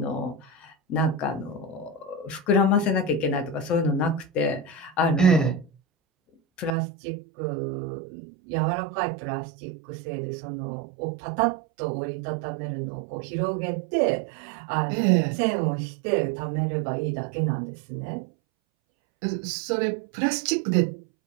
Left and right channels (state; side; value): drops out; left; at 6.8 s